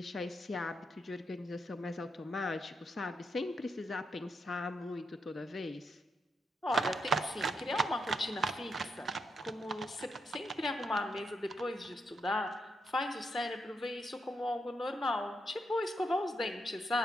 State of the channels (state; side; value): normal; both; correlation 0.81